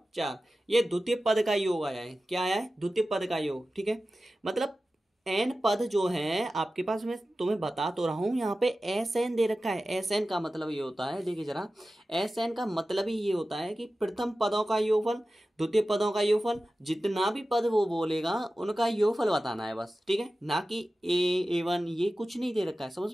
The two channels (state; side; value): normal; both; correlation 0.94